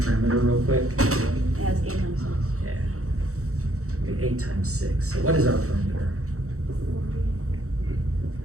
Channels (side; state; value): left; late; 0.64 ms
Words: perimeter real quick? Yeah, it's 8 times 6. Yeah. Okay, 8 times 6. So what is our perimeter?